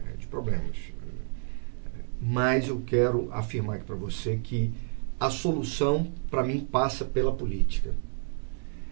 problemas. Mas eu quero afirmar aqui para você que a solução, para mim, passa pela política.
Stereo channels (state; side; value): silent; left; 58 dB below the other